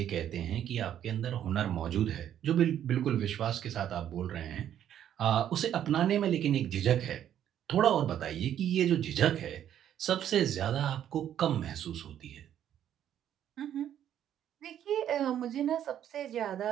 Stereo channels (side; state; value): left; quieter; 10.5 dB